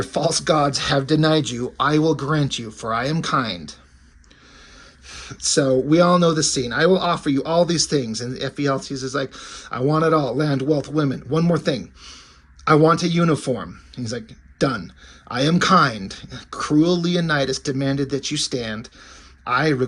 false gods have denied you, I will grant you, for I am kind. So we all know the scene. I will offer you all these things. And Ephialtes is like, I want it all, land, wealth, women. One more thing. I want a uniform. He's like, done. I am kind. Cruel Leonidas demanded that you stand. I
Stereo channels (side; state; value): both; identical; correlation 1.00